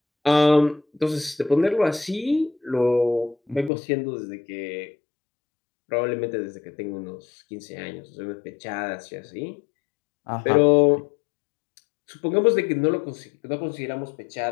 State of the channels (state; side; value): drops out; right; at 3.7 s